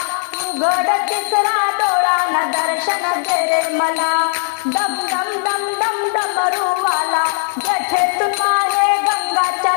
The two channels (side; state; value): right; silent; 55 dB below the other